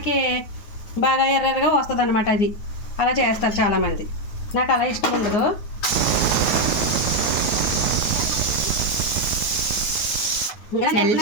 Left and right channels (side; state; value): right; late; 9.4 ms